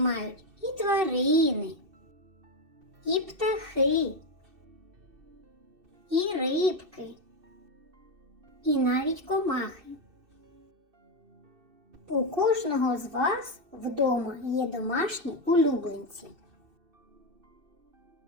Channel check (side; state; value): left; late; 2.6 ms